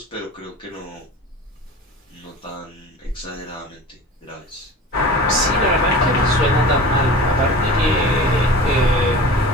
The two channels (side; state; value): both; normal; correlation 0.38